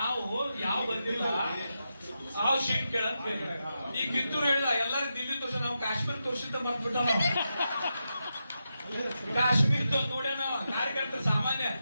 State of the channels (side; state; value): both; inverted; correlation -0.88